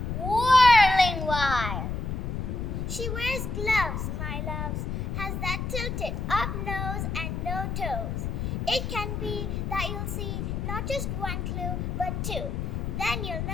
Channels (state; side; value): noise; left; rumble, 3 dB below the sound